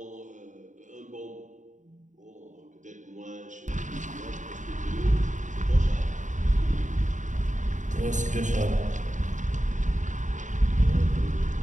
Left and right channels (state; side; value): late; left; 0.36 ms